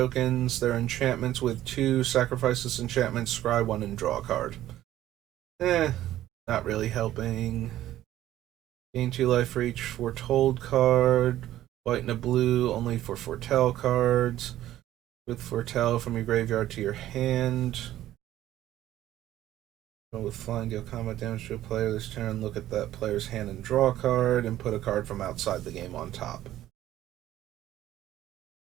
They're enchantments with 2. Sacrifice this enchantment, scry 1, and draw a card. Not really helping. Gain 2 life for each foretold card. White and a blue, only for foretell cards. With foretell from your graveyard to your hand. With flying, deal combat damage to a player this turn. Look at that player's hand and draw a card, and put a card from outside the game on top.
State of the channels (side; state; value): left; quieter; 13.5 dB